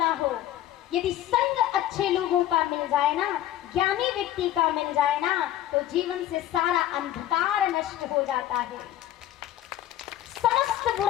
हो, यदि संग अच्छे लोगों का मिल जाए ना, ज्ञानी व्यक्ति का मिल जाए ना, तो जीवन से सारा अंधकार नष्ट हो जाता है, समस्त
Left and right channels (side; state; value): right; quieter; 12.8 dB